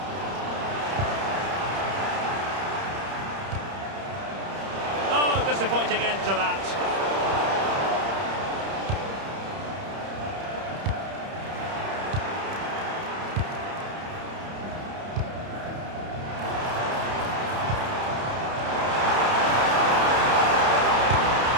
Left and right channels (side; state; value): left; late; 30 ms